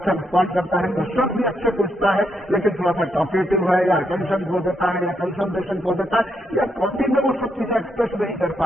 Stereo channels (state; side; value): normal; both; correlation 0.79